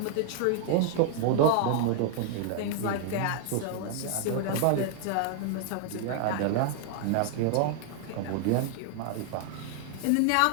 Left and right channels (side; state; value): both; different; correlation 0.00